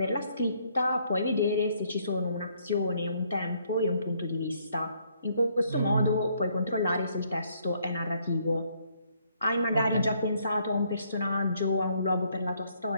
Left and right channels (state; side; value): inverted; both; correlation -0.68